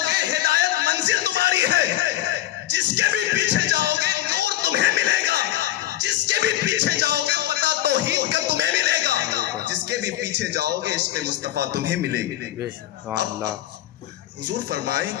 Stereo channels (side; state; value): right; quieter; 13.7 dB